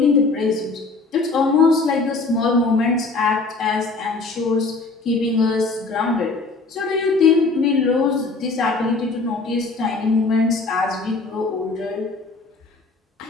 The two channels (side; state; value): right; quieter; 3.7 dB